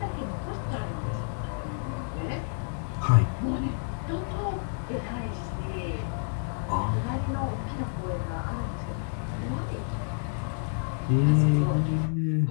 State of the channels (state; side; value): silent; right; digital silence